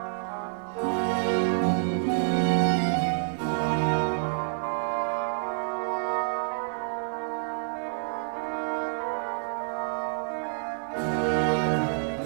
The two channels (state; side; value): silent; left; digital silence